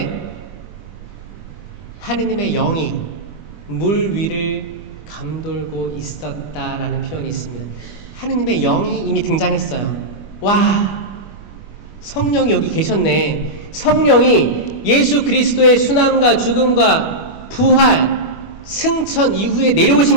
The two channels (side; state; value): right; late; 20 ms